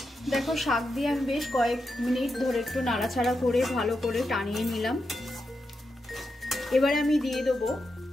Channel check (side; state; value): both; normal; correlation 0.86